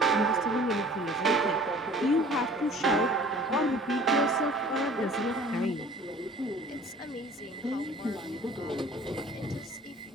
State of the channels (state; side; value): normal; both; correlation 0.49